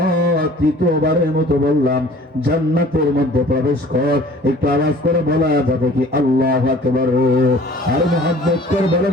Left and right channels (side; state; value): both; normal; correlation 0.49